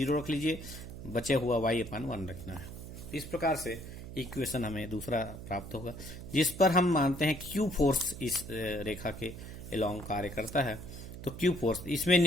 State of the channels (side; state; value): right; noise; hum, 11 dB below the sound